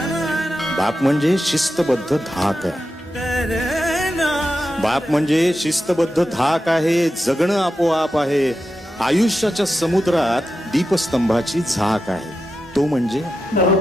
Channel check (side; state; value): both; normal; correlation 0.90